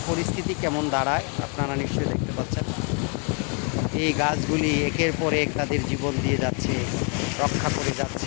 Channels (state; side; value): quieter; right; 37.5 dB